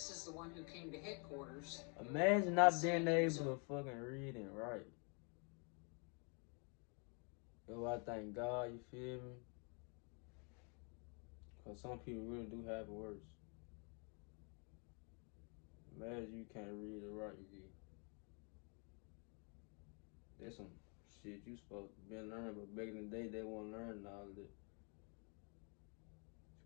is the one who came to headquarters. Imagine not being able to fucking read and write. Yo, I thank God, you feel me? Because some people really do have it worse. Imagine you can't read or write, you. There's some shit you supposed to be learning, but back in the day, they weren't learning all of it. It's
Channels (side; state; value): right; quieter; 36.7 dB